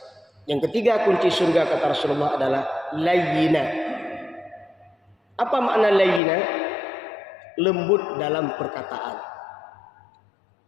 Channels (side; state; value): right; drops out; at 6.2 s